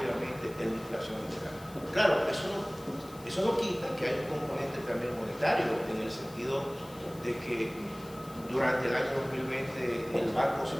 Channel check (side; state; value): left; noise; hiss, 21 dB below the sound